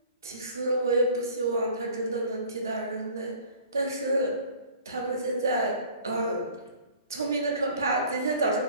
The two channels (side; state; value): both; inverted; correlation -0.49